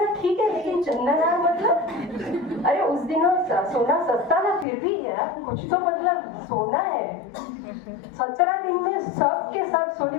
ठीक है, लेकिन चंदन मतलब अरे उस दिनों सोना सस्ता था, फिर भी यार कुछ तो मतलब सोना है। 17 दिन में सब के सब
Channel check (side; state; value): right; drops out; at 4.7 s